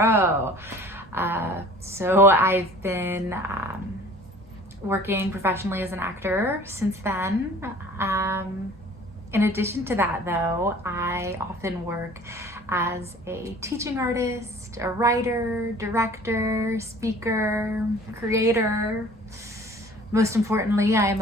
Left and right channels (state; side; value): normal; both; correlation 0.48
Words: So I've been working professionally as an actor since then. In addition to that, though, I often work as a teaching artist, a writer, director, speaker, creator. Most importantly, I am